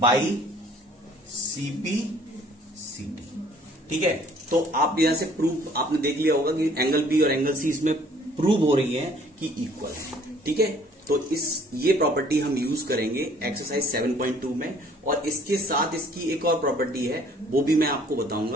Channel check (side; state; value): both; normal; correlation 0.57